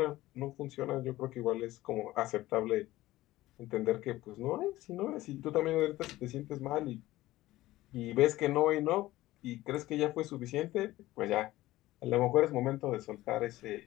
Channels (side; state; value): right; quieter; 16.8 dB